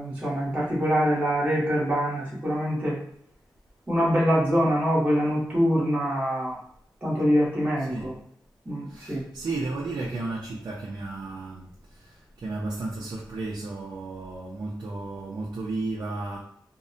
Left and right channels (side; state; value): both; normal; correlation 0.89